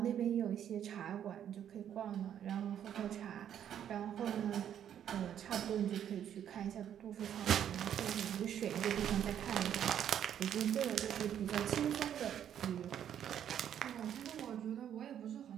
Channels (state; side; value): quieter; left; 9.7 dB